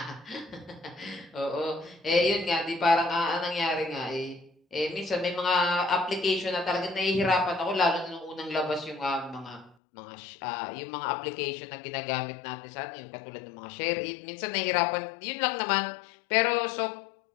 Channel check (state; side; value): drops out; right; at 9.8 s